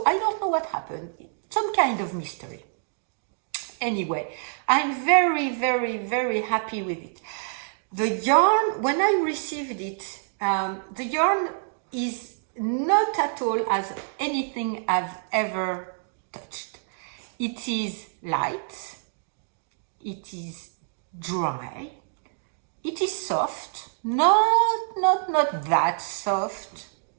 I don't know what happened. Some kind of mystery. Anyway, I'm very, very, very happy with it. The yarn, when I received it, the yarn is not at all as anything I've ever touched. It is light, it is dry, it is soft, not that soft,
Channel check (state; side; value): silent; left; digital silence